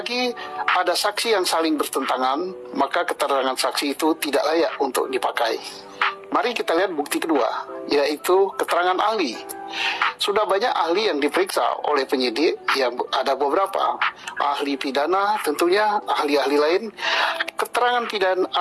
ada saksi yang saling bertentangan, maka keterangan saksi itu tidak layak untuk dipakai. Mari kita lihat bukti kedua, yaitu keterangan ahli. Sudah banyak ahli yang diperiksa oleh penyidik, yang ada beberapa ahli pidana, tentunya ahli-ahli lain. Keterangan pidana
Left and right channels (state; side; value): identical; both; correlation 1.00